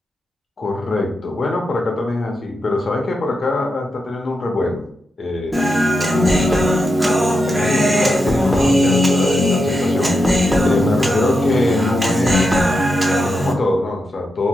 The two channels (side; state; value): both; normal; correlation 0.86